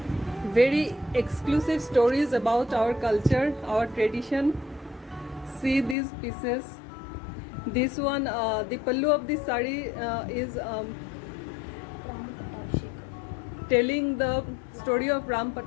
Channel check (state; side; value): drops out; right; at 6.0 s